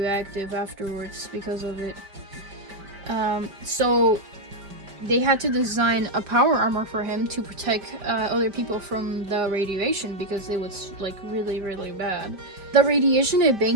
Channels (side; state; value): left; late; 5.1 ms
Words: afterwards because of it. So they had to design a power armor for him to protect other people from the radiation because it was like really, really bad. The radiation